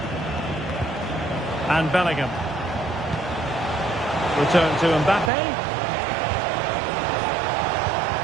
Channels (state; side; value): drops out; left; at 5.3 s